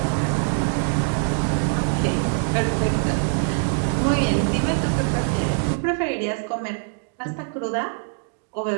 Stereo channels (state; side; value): silent; left; 63 dB below the other